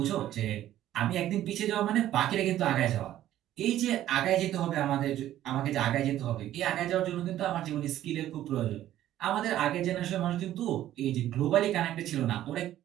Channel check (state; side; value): quieter; left; 12.9 dB